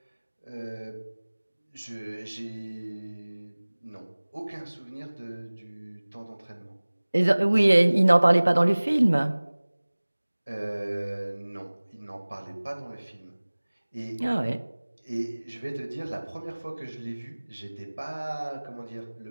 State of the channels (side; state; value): both; inverted; correlation -1.00